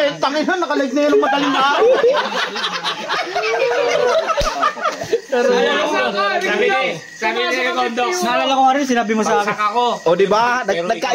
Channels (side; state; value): both; identical; correlation 1.00